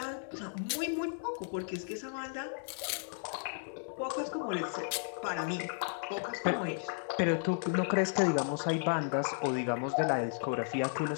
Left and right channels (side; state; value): right; silent; digital silence